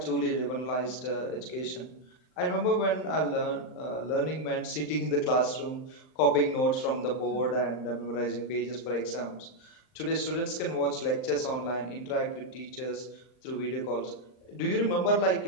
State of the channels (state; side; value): late; right; 39 ms